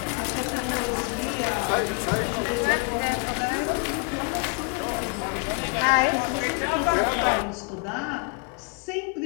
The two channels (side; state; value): right; quieter; 36.1 dB